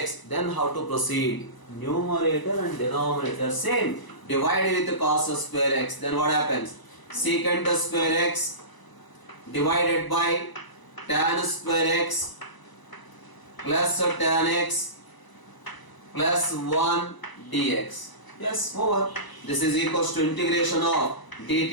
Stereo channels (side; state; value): right; late; 1.0 ms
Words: Then how to proceed? Numerator and denominator same. Divide with cos square x. Then what happens? Secant square x divided by tan square x plus tan x plus 1 dx. Yes, over. This is equals to integration of